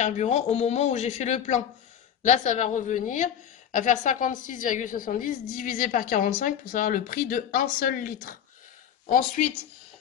au moment où j'ai fait le plein? Là, ça va revenir à faire 56,70 divisé par 45 pour savoir le prix de un seul litre. Ensuite,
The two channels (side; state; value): right; quieter; 9.1 dB